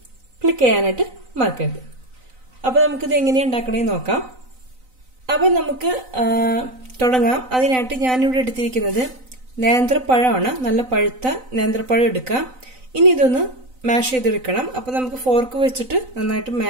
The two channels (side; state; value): left; late; 3.9 ms